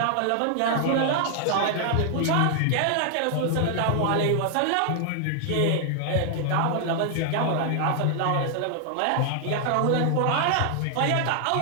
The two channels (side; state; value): both; different; correlation 0.00